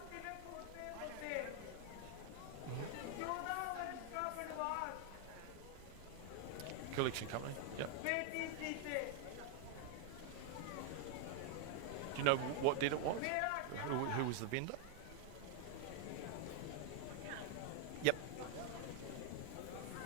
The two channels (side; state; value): both; different; correlation 0.00